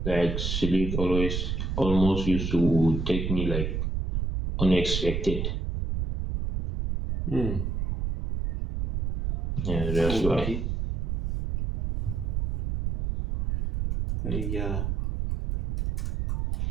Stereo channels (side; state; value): right; noise; rumble, 1 dB below the sound